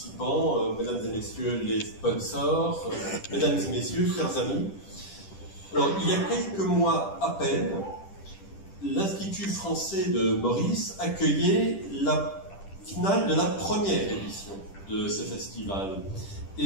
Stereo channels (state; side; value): late; right; 10 ms